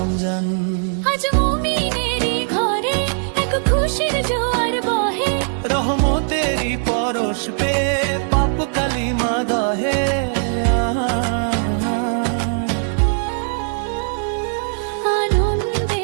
আজ মুমিনেরই ঘরে এক খুশির জোয়ার বহে, রহমতেরই পরশ পে পাপ কালিমা দহে। আনন্দে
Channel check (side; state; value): left; silent; digital silence